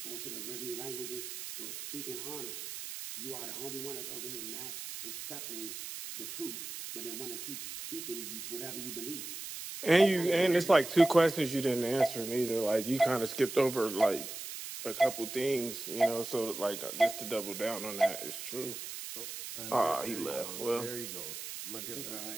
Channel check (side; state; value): right; noise; hiss, 8 dB below the sound